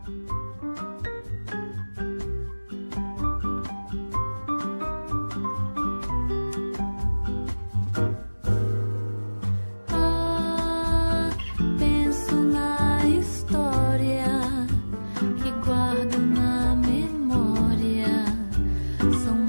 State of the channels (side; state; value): both; inverted; correlation -1.00